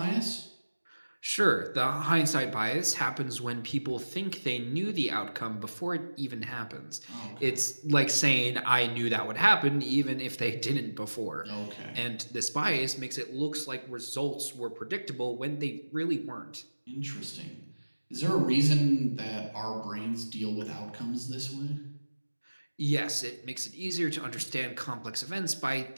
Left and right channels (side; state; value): both; inverted; correlation -1.00